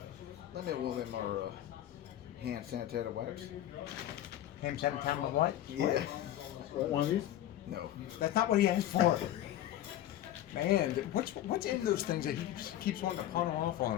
Let me roll in our hand sanitizer wipes. him sent time with what? Yeah. One of these? No. That's not what he asked for. Man, what's in those things that he keeps wanting to pawn them off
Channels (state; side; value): quieter; right; 12.6 dB